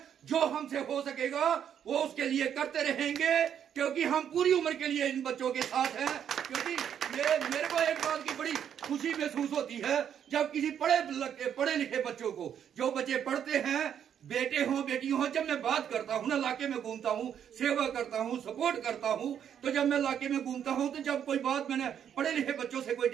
जो हमसे हो सकेगा वो उसके लिए करते रहेंगे, क्योंकि हम पूरी उम्र के लिए इन बच्चों के साथ हैं। क्योंकि मेरे को एक बात की बड़ी खुशी महसूस होती है जब किसी पढ़े लिखे बच्चों को, जो बच्चे पढ़ते हैं, बेटे हों बेटी हों, जब मैं बात करता हूँ ना, इलाके में घूमता हूँ, सेवा करता हूँ, सपोर्ट करता हूँ, तो जब मैं इलाके में घूमता हूँ तो जब कोई बात मैंने पढ़े लिखे बच्चों से कोई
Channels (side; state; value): left; quieter; 8.9 dB